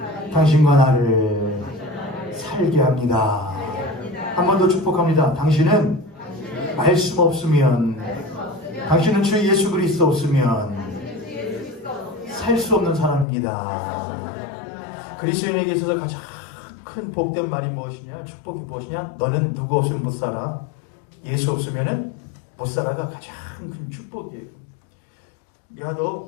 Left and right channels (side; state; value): right; drops out; at 13.2 s